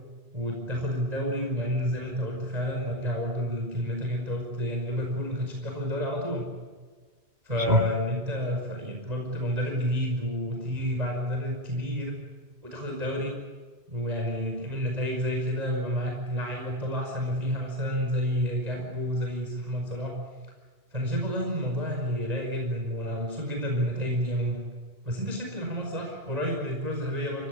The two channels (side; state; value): left; late; 1.9 ms